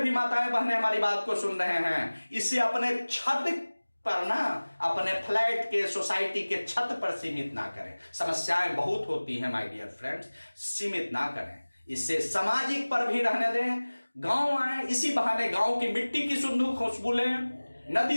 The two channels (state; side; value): inverted; both; correlation -1.00